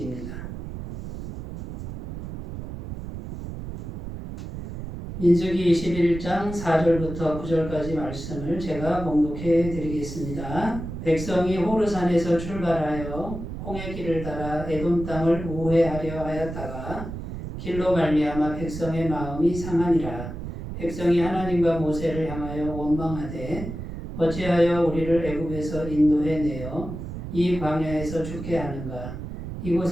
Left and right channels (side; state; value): right; noise; rumble, 8 dB below the sound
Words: 민수기 21장 4절부터 9절까지 말씀을 제가 봉독해 드리겠습니다. 백성이 호르산에서 출발하여 홍해 길을 따라 에돔 땅을 우회하려 하였다가 길로 말미암아 백성의 마음이 상하니라. 백성이 하나님과 모세를 향하여 원망하되 어찌하여 우리를 애굽에서 인도해 내어 이 광야에서 죽게 하는가.